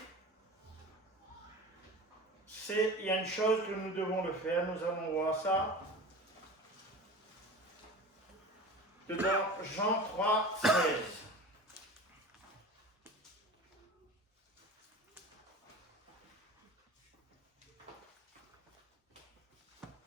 il y a une chose que nous devons le faire, nous allons voir ça dans Jean 3, 16.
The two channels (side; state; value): both; normal; correlation 0.34